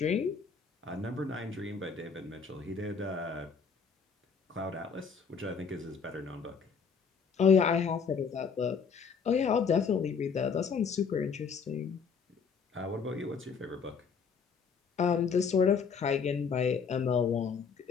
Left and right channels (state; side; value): quieter; right; 5.9 dB